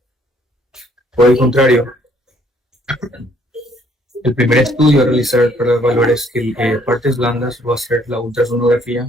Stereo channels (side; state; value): both; normal; correlation 0.64